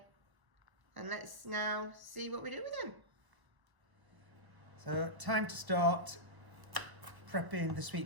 And let's now see what we do with them. So, time to start prepping the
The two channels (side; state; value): left; late; 1.1 ms